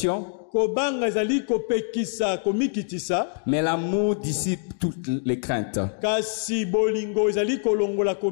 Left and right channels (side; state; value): right; silent; 62 dB below the other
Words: mais l'amour dissipe toutes les craintes.